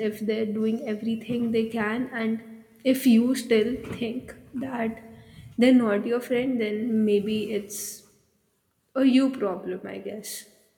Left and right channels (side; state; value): both; identical; correlation 1.00